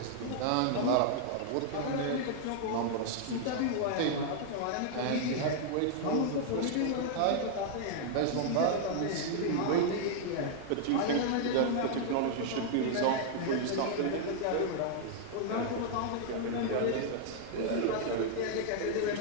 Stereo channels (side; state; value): both; different; correlation -0.01